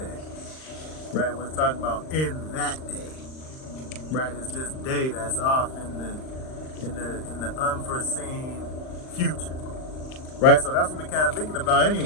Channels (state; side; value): late; right; 39 ms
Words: right? When it's talking about in that day, right? It's this day that's off in the unforeseen future, right? So that's what we kind of thinking about